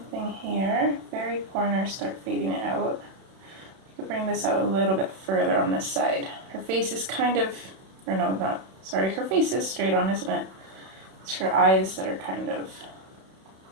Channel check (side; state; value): left; late; 31 ms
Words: thing here, very corner, start fading it out. I'll bring this out a little bit further on this side. Her face is kind of, or no, not, sorry, her face is straight on, isn't it? It's her eyes that are kind of